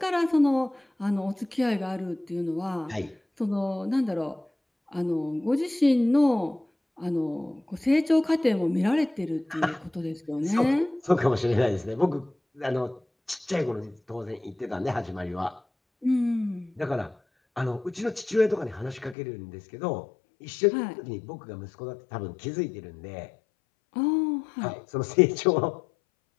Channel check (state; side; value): drops out; right; at 19.2 s